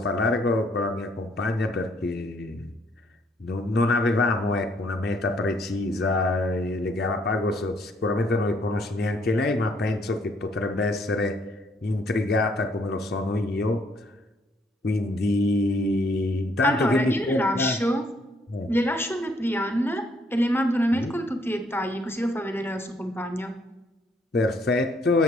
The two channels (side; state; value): both; normal; correlation 0.67